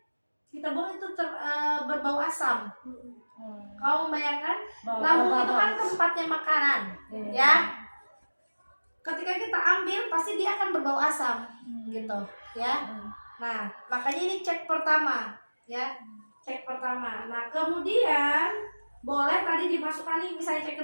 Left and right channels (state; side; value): inverted; both; correlation -1.00